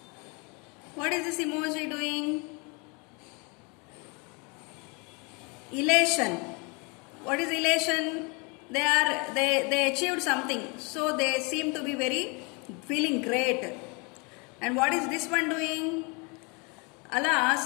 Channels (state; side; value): quieter; right; 31.2 dB